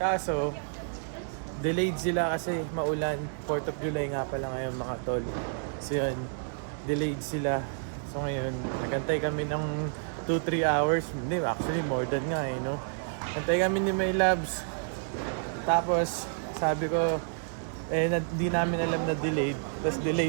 Kaso, delayed sila kasi maulan. 4th of July nga pala ngayon mga tol. So yun, delayed sila. So ngayon, nagantay kami ng 2-3 hours. Hindi, actually more than nga no? Antay kami ni My Loves. Tapos, sabi ko, di namin alam na delayed. Tapos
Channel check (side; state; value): left; silent; digital silence